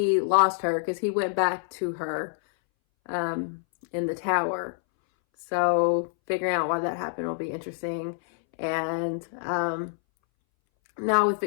lost her, because he went back to her in the tower. So figuring out why that happened will be interesting. And now with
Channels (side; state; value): right; silent; 60 dB below the other